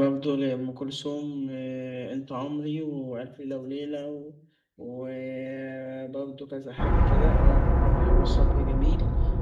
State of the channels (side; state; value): both; identical; correlation 1.00